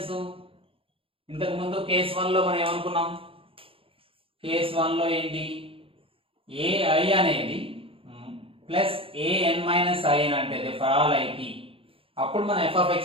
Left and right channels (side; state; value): left; late; 0.27 ms